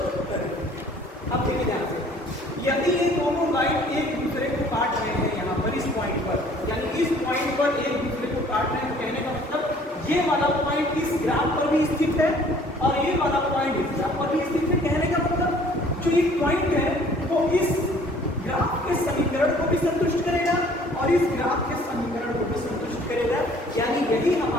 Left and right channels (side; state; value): both; normal; correlation 0.55